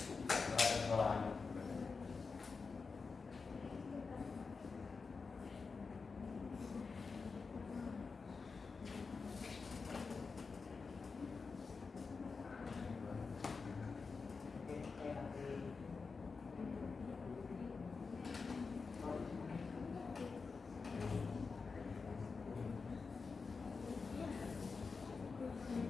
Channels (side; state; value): right; quieter; 4.7 dB